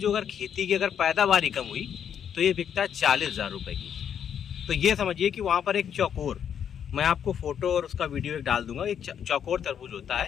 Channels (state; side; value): quieter; right; 8.5 dB